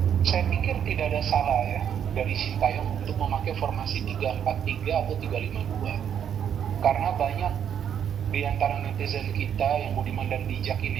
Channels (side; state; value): left; quieter; 8.8 dB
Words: Saya pikir tidak ada salah ya dari Sintayong untuk memakai formasi 3-4-3 atau 3-5-2. Karena banyak di antara netizen kita yang budiman dan bijak